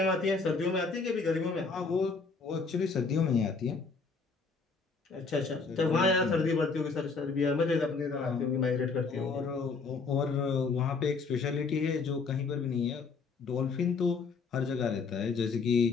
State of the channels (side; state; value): right; quieter; 4.6 dB